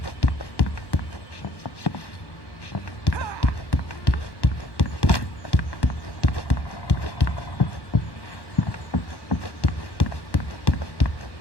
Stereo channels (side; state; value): right; late; 1.1 ms